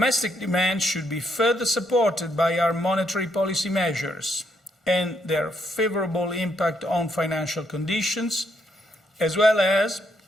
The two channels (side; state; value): both; normal; correlation 0.75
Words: demand should be further supported by our monetary policy measures and their favorable impact on financial conditions, as well as